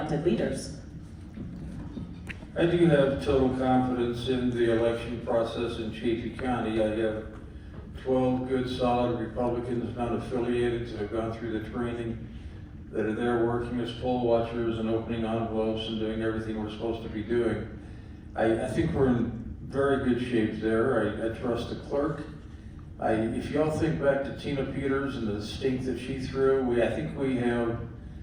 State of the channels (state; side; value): identical; both; correlation 1.00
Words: leaders. I do have total confidence in the election process in Chaffee County. I have 12 good, solid Republicans not affiliated that have gone through the training, that are there working as poll watchers and opening envelopes and doing everything we're supposed to be doing. I think we're in very good shape there. I trust the clerk. If y'all think back to Tina Peters and the stink that she threw, I